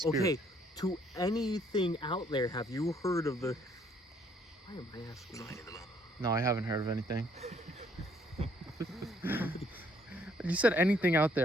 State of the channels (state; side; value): normal; both; correlation 0.65